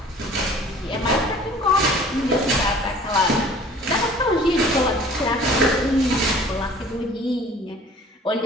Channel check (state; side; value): normal; both; correlation 0.49